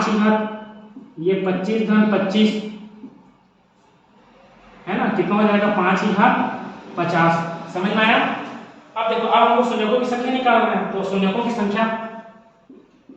की घात ये 25 घन 25, है ना, कितना हो जाएगा? 5 की घात 50। समझ में आया? अब देखो, अब हमको शून्यकों की संख्या निकालना है, तो शून्यकों की संख्या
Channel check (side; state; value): both; identical; correlation 1.00